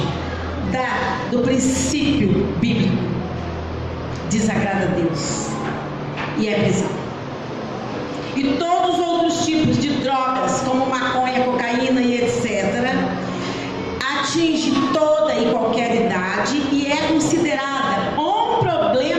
do princípio bíblico, desagrada a Deus e é prisão. E todos os outros tipos de drogas, como maconha, cocaína e etc., atinge toda e qualquer idade e é considerada um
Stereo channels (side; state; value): both; identical; correlation 1.00